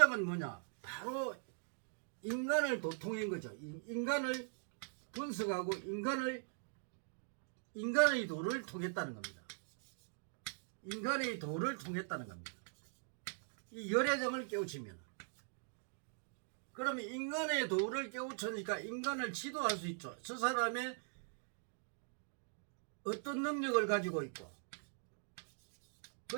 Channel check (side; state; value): left; silent; digital silence